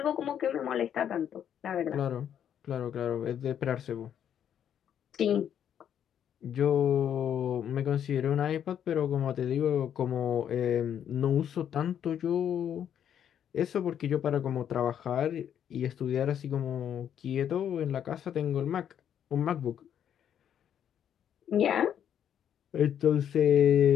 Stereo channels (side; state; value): right; quieter; 9.3 dB